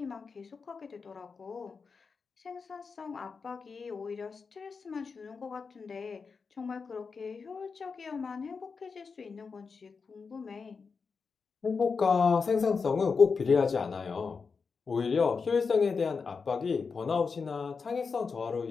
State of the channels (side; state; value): right; quieter; 5.1 dB